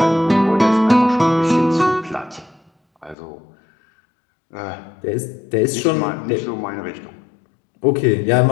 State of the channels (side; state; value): right; drops out; at 3.2 s